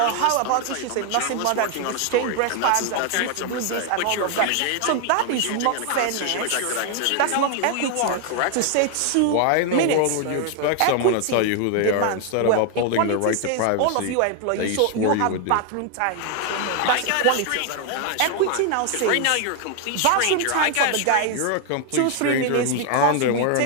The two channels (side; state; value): both; different; correlation 0.00